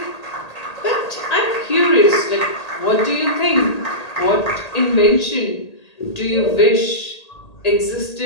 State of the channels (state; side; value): late; right; 1.8 ms